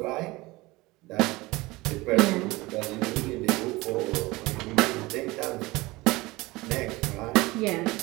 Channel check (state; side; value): quieter; left; 21.4 dB